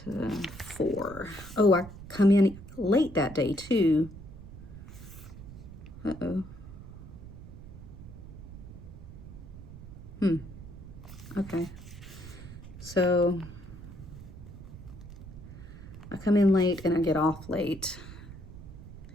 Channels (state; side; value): noise; right; rumble, 14 dB below the sound